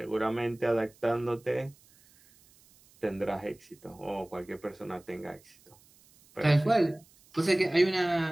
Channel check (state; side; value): noise; right; hiss, 29 dB below the sound